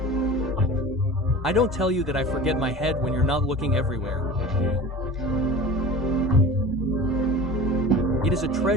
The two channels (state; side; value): normal; both; correlation 0.37